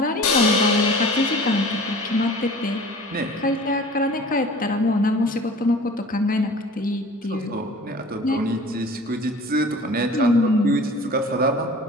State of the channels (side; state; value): both; normal; correlation 0.43